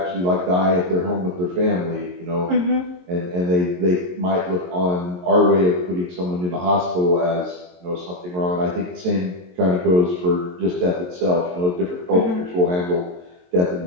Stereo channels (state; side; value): late; left; 22 ms